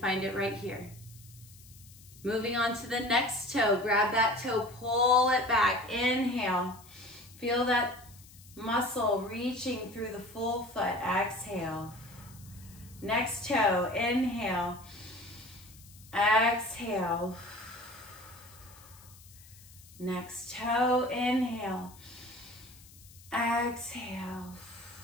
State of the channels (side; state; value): left; noise; hiss, 22 dB below the sound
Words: it right here. Moving on to the next toe. Grab that toe, pull it back. Inhale. Feel that muscle reaching through the full foot. Exhale. Next toe. Inhale. Exhale. Next toe. Inhale. Exhale.